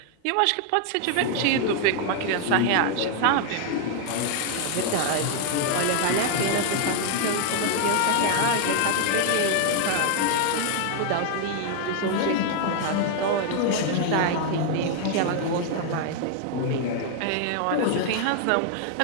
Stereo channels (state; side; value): different; both; correlation 0.00